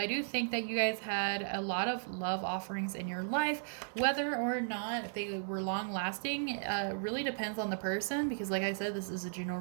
do think that you guys had a lot of love offerings in your life. Whether or not they were long-lasting really depends on the person, because like I said, this is a general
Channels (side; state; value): left; silent; digital silence